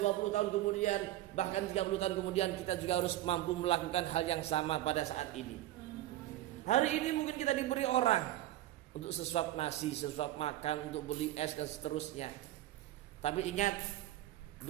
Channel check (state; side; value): quieter; left; 14.7 dB